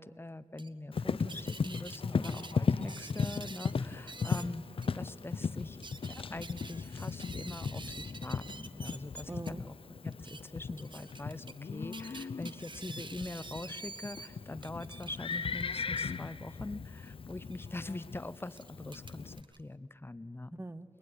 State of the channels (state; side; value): quieter; right; 3.8 dB